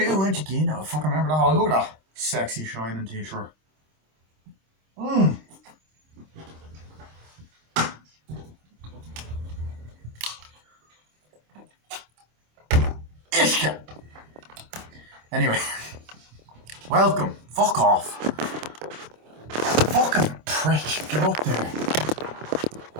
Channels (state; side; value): late; left; 26 ms